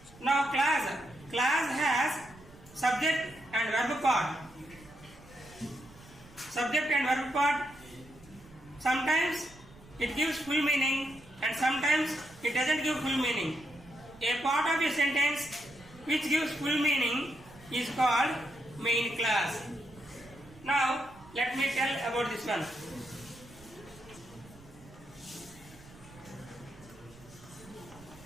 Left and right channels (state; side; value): noise; right; rumble, 22 dB below the sound